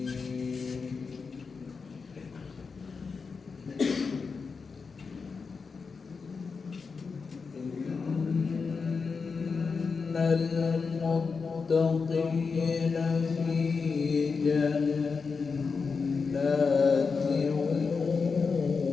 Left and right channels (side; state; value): right; quieter; 5.0 dB